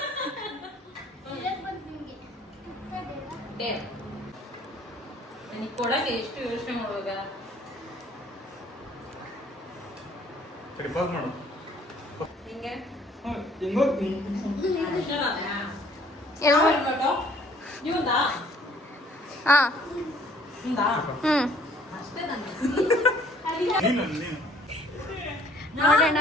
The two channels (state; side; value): normal; both; correlation 0.58